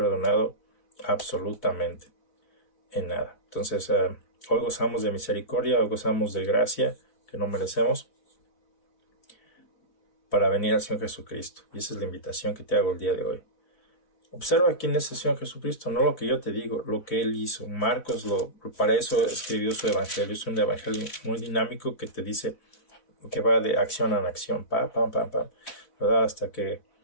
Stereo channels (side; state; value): right; late; 4.1 ms